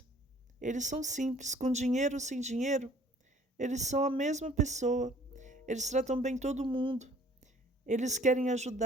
Eles são simples, com dinheiro ou sem dinheiro, eles são a mesma pessoa. Eles tratam bem todo mundo. Eles querem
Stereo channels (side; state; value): both; normal; correlation 0.55